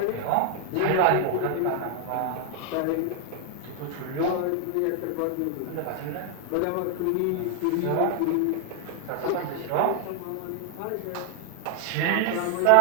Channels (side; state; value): both; different; correlation 0.00